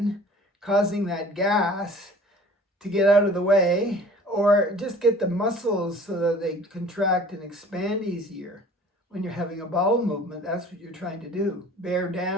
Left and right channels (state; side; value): normal; both; correlation 0.47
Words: causing that gas to get out of the way, or just get the muscles so that they contract and expand easier. When you're having a bowel movement, that's what you're trying to do. Bear